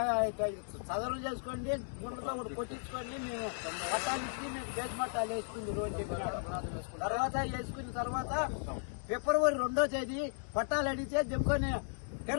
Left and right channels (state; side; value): silent; right; digital silence